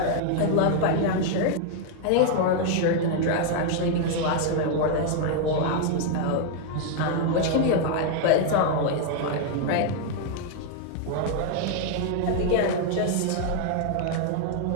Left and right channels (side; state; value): both; different; correlation 0.00